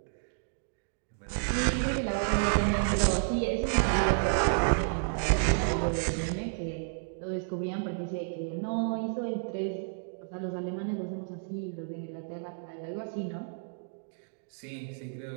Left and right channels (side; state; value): left; silent; digital silence